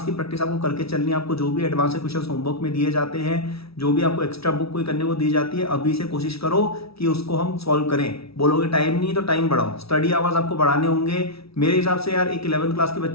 की प्रैक्टिस आपको करके चलनी है। आपको जो भी एडवांस के क्वेश्चन होमवर्क में दिए जाते हैं, जो भी आपको एक्स्ट्रा बुक कोई करने को दी जाती है, अभी से कोशिश करो कि उसको हम सॉल्व करें। बोलोगे टाइम नहीं तो टाइम बढ़ाओ, स्टडी आवर्स आपको बढ़ाने होंगे। मेरे हिसाब से यार एक 11th क्लास के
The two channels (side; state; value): right; late; 0.76 ms